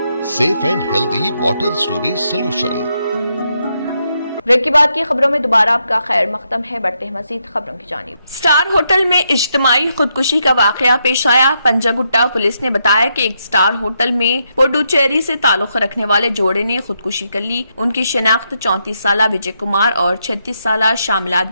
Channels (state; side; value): inverted; both; correlation -0.80